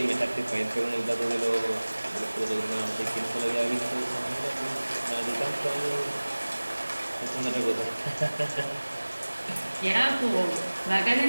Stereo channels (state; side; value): inverted; both; correlation -1.00